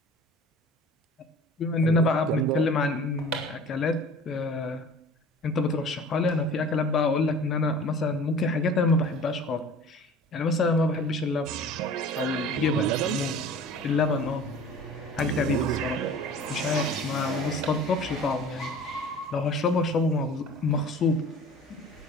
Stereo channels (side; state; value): both; normal; correlation 0.43